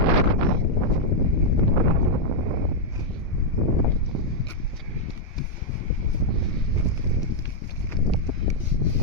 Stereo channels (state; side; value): normal; both; correlation -0.02